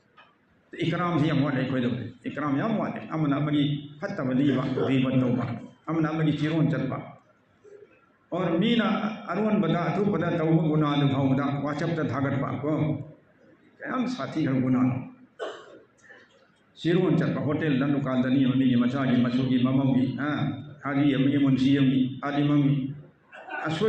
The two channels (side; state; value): both; identical; correlation 1.00